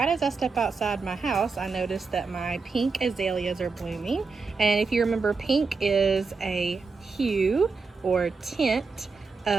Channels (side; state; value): left; quieter; 4.5 dB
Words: as I step outside my house, I noticed that my pink azaleas are blooming. And if you remember, pink is a hue or tint